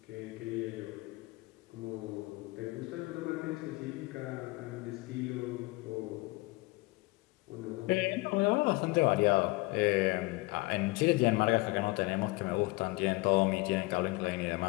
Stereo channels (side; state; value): right; quieter; 23.1 dB